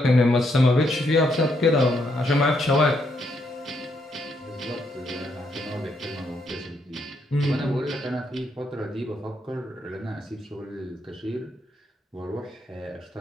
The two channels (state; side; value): normal; both; correlation 0.76